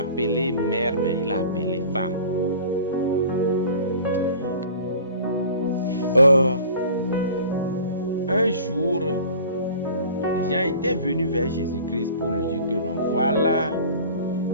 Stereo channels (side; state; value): both; inverted; correlation -0.44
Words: appelée mère, mais il l'a appelée femme. Un jour, les gens étaient venus vers Jésus-Christ pour lui dire que non, voilà,